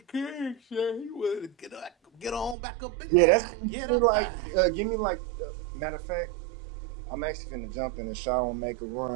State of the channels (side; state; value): left; drops out; at 2.6 s